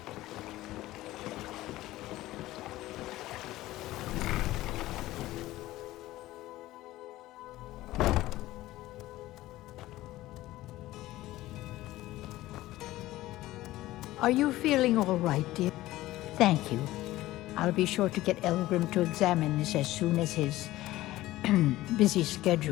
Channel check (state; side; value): quieter; right; 16.5 dB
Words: Are you feeling all right, dear? Thank you. I'll be sure to get Elgrim to examine this as soon as his busy